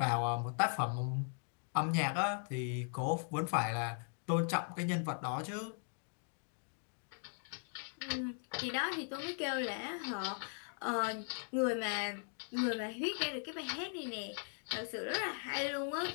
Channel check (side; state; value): right; silent; 52 dB below the other